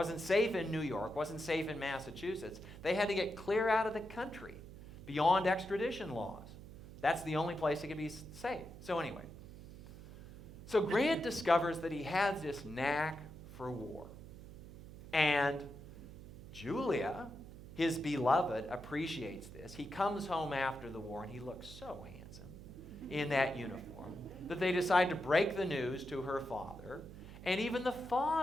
safe in New York, wasn't safe in Massachusetts. They had to get clear out of the country, beyond extradition laws. That's the only place it could be safe. So anyway, so Grant discovers that he has this knack for war. And Julia, his beloved, appreciates this. He comes home after the war, and he looks so handsome in that uniform that they decide to break the news to her father. And even the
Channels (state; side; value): noise; right; hum, 14 dB below the sound